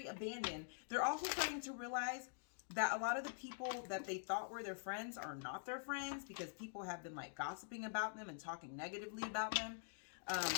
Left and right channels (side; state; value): right; silent; digital silence